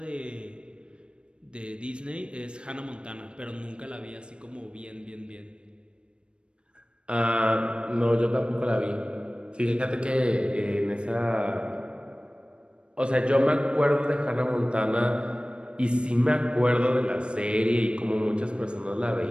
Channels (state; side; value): late; left; 0.056 ms